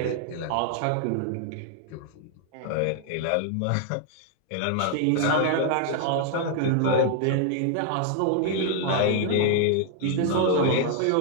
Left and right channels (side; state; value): both; different; correlation 0.00